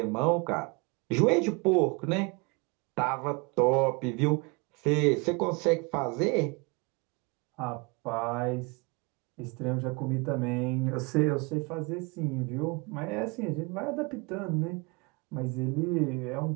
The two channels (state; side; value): quieter; left; 29.3 dB